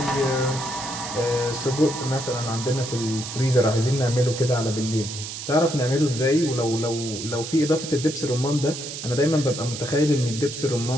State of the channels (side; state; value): right; noise; hiss, 8 dB below the sound